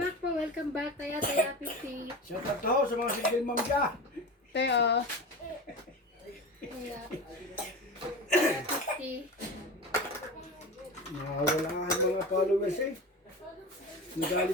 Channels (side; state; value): both; normal; correlation 0.28